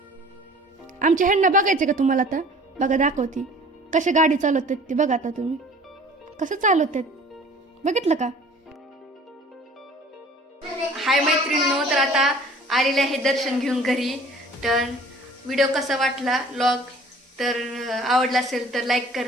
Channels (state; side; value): normal; both; correlation 0.49